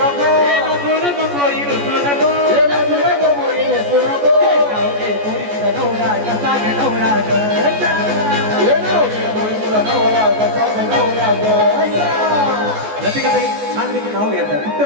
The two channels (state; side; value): late; left; 14 ms